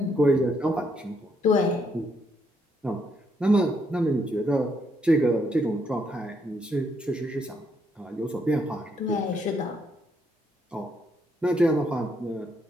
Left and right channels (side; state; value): both; normal; correlation 0.75